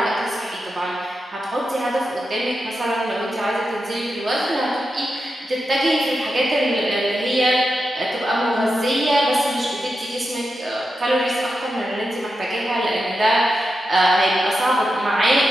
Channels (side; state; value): both; normal; correlation 0.89